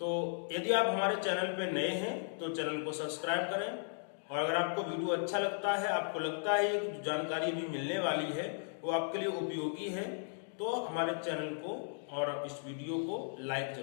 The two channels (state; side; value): silent; right; digital silence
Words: यदि आप हमारे चैनल पे नए हैं तो चैनल को सब्सक्राइब करें, और अगर आपको वीडियो अच्छा लगता है, आपको लगता है कि जो जानकारी भी मिलने वाली है वो आपके लिए उपयोगी है, तो हमारे चैनल को और इस वीडियो को लाइक